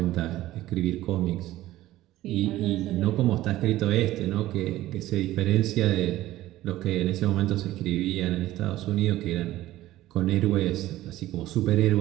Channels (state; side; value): quieter; left; 15.5 dB